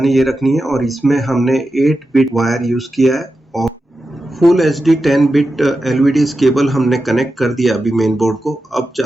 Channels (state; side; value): normal; both; correlation 0.90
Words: ये रखनी है। और इसमें हमने 8 बिट वायर यूज़ किया है और full HD 10 bit LVDS cable हमने कनेक्ट कर दिया अभी मेन बोर्ड को। अब